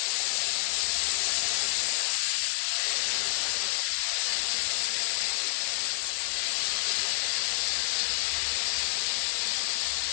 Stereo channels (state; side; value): silent; right; digital silence